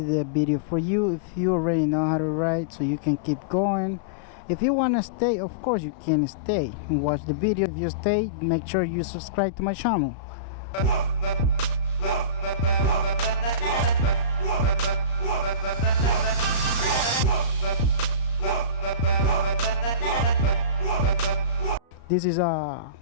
the video for you. If you already know how to ride, so you can keep going. If you want to stay, of course you can stay and watch the video. If you stay, make sure you subscribe to my channel. This is my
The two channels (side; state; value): right; late; 35 ms